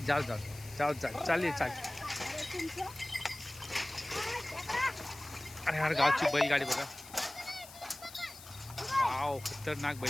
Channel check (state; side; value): noise; left; hiss, 17 dB below the sound